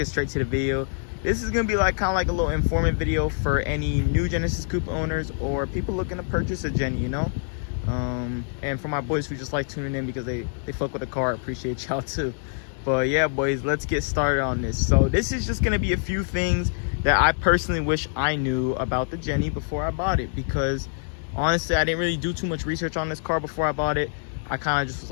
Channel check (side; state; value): right; silent; digital silence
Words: straight to the video. This is gonna be like kind of like a little informative video for any new Genesis Coupe owners or people looking to purchase a Jenny, you know. And for my boys who just like tuning in because they fuck with the car, I appreciate y'all too. But yeah, boys, let's get started on this. So this is just gonna be a few things that I personally wish I knew about the Jenny before I bought it, because honestly I didn't really do too much research on this car before I bought it. I kind of just was